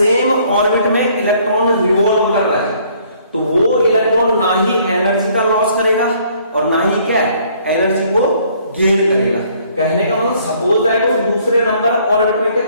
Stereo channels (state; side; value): inverted; both; correlation -0.62